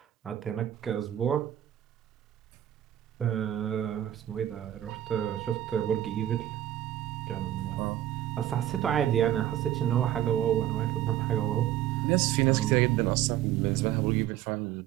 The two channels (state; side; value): quieter; left; 12.2 dB